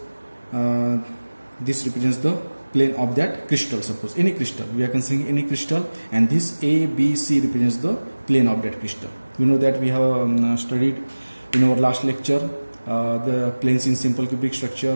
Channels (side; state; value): both; inverted; correlation -1.00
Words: this represents the plane of that crystal. Suppose any crystal, we are considering any crystal, and this A, B, C represents the plane of that crystal. We know that we have studied in our last lecture the planes in simple cubic structure,